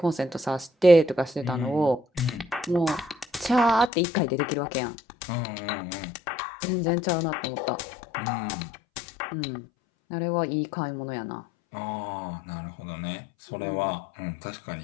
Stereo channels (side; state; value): right; drops out; at 3.9 s